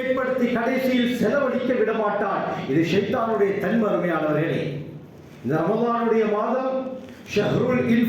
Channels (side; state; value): both; identical; correlation 1.00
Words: கடைசியில் செலவழிக்க விடமாட்டான். இது ஷைத்தானுடைய தன்மருமையானவர்களே. இந்த ரமலானுடைய மாதம் ஷஹ்ருல்